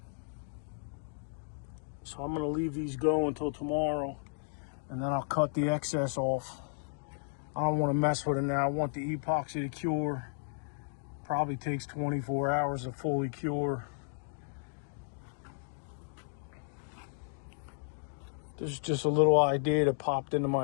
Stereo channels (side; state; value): right; silent; digital silence